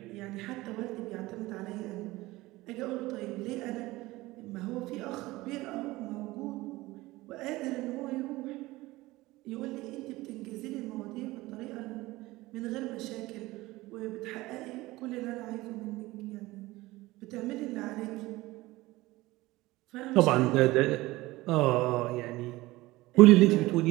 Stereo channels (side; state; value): left; quieter; 19.3 dB